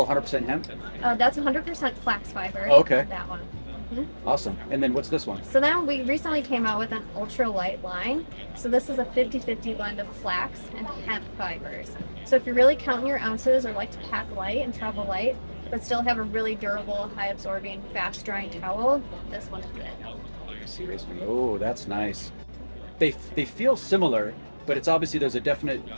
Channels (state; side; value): inverted; both; correlation -1.00